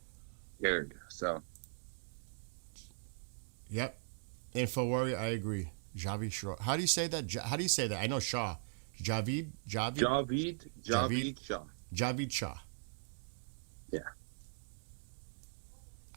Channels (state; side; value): silent; left; digital silence